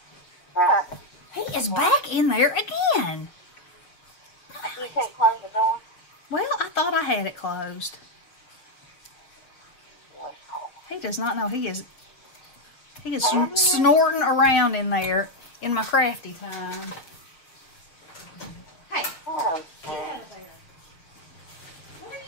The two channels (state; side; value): late; right; 6.0 ms